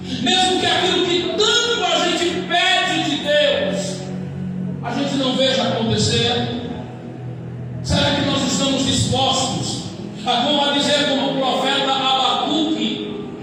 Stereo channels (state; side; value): identical; both; correlation 1.00